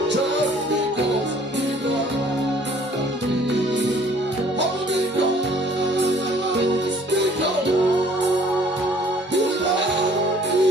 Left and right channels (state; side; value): normal; both; correlation 0.56